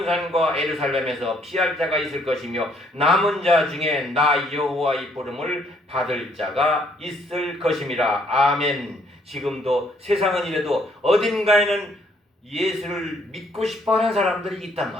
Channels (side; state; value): both; normal; correlation 0.67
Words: 예루살렘에서 피할 자가 있을 것이며 남은 자 중에 나 여호와의 부름을 받을 자가 있을 것임이라. 아멘. 지금도 세상은 이래도 어딘가에는 예수를 믿고 싶어하는 사람들이 있단